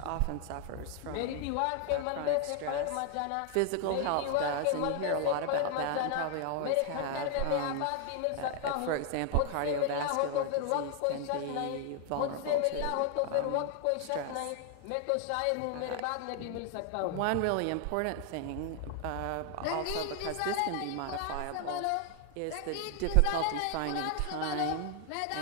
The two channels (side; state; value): both; different; correlation 0.00